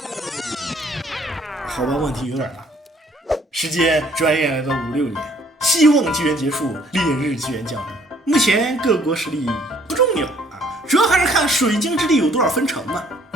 好吧，问题有点大。时间转眼来到56年，希望纪元结束，烈日纪元降临。目前各国实力不重要主要还是看水晶之地有多少分城嘛。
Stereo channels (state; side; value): normal; both; correlation 0.61